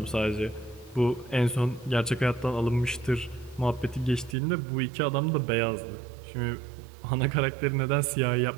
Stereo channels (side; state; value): left; drops out; at 4.4 s